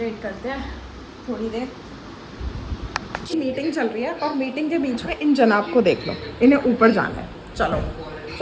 करते हैं थोड़ी देर। मीटिंग चल रही है और मीटिंग के बीच में इन जनाब को देख लो, इन्हें ऊपर जाना है। चलो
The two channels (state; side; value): identical; both; correlation 1.00